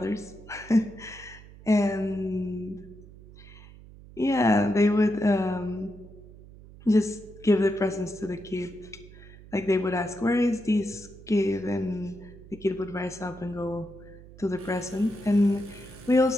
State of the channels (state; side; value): noise; right; hum, 19 dB below the sound